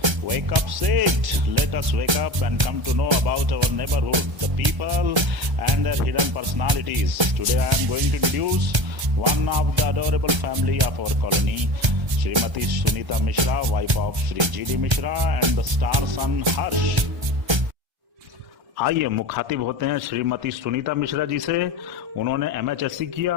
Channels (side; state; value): left; late; 1.3 ms